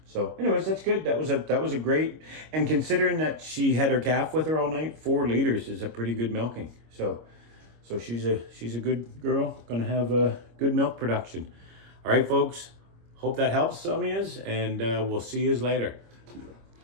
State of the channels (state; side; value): late; left; 25 ms